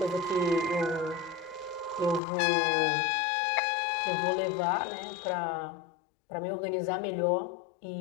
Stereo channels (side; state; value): right; drops out; at 2.2 s